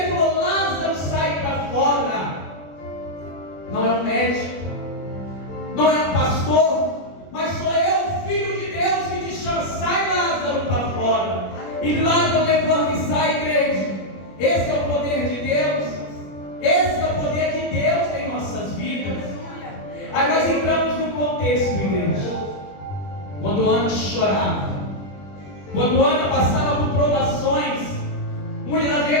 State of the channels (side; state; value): right; late; 21 ms